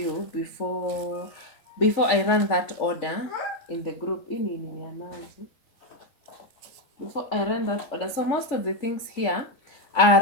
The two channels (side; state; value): right; late; 3.4 ms